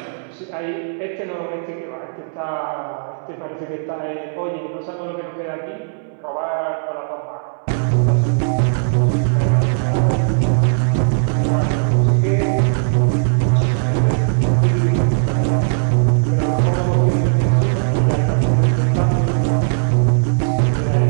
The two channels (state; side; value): silent; left; digital silence